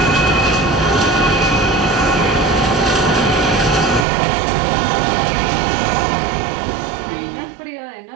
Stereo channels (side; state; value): left; drops out; at 4.0 s